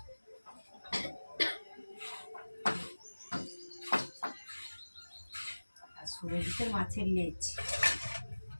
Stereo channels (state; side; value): inverted; both; correlation -1.00